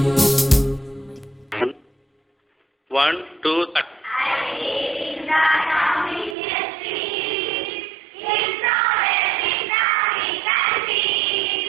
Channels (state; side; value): drops out; left; at 6.4 s